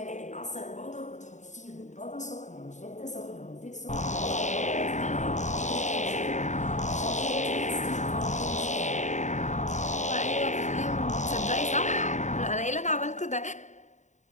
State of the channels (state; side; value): late; right; 0.35 ms